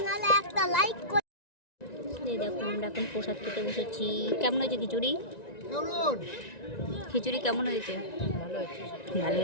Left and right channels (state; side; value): late; right; 1.9 ms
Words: দেখো আমরা এখন প্রসাদ খেতে বসেছি। কেমন হয়েছে খিচুড়ি? খিচুড়ি কেমন হয়েছে? ভালো